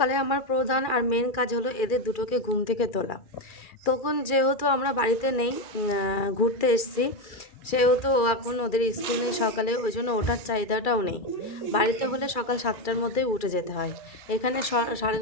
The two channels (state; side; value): late; right; 2.3 ms